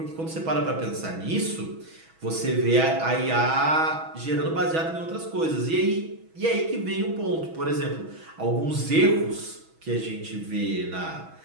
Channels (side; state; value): left; late; 6.2 ms